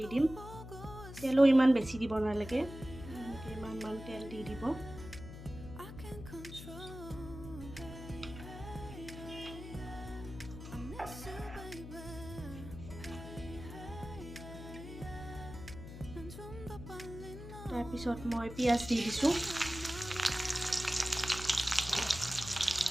দিম। তেলো ইমান বেছি দিব নালাগে, ইমান তেল দি দিব। তাৰপিছত মই পিঁয়াজ দি দিছোঁ।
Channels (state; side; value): noise; left; hum, 12 dB below the sound